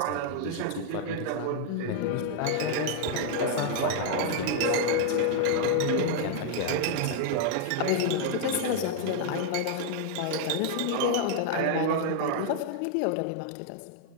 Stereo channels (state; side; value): different; both; correlation 0.00